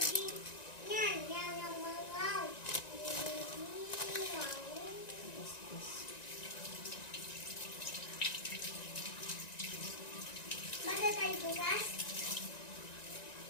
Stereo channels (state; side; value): late; right; 1.9 ms